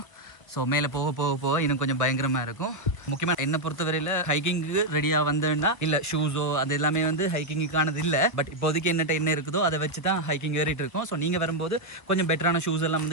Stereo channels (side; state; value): right; late; 1.4 ms